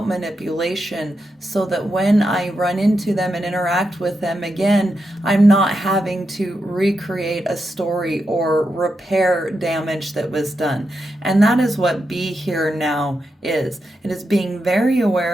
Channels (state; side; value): normal; both; correlation 0.86